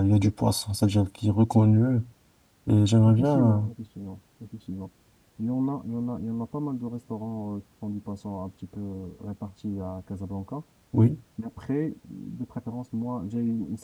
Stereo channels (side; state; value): both; identical; correlation 1.00